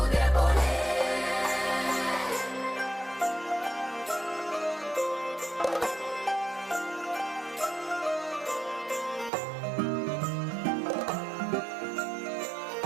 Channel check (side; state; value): left; drops out; at 9.3 s